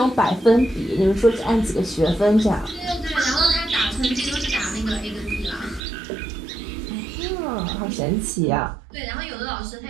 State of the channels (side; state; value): left; drops out; at 5.8 s